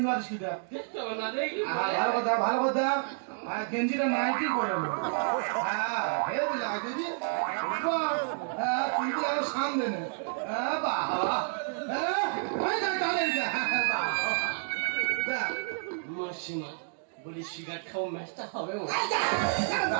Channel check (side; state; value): left; silent; digital silence